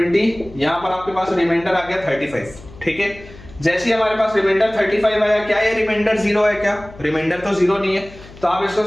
यहाँ पर आपके पास रिमाइंडर आ गया 35, ठीक है। जैसे ही हमारे पास रिमाइंडर 35 आया, क्या ये रिमाइंडर 0 है? क्या रिमाइंडर तो 0 नहीं है, तो आप इसको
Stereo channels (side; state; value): left; noise; hum, 19 dB below the sound